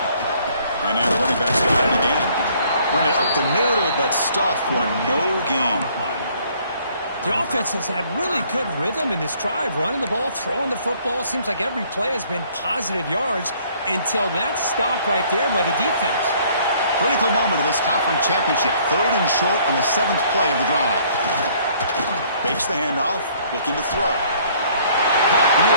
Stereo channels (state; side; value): inverted; both; correlation -0.61